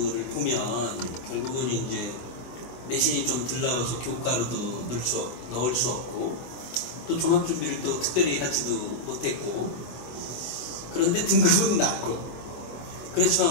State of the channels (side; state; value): right; late; 24 ms